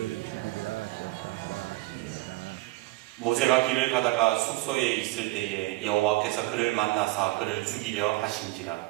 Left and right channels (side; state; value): left; quieter; 20.0 dB